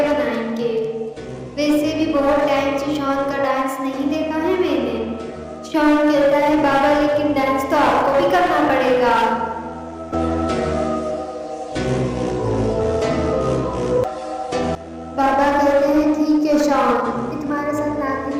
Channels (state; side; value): identical; both; correlation 1.00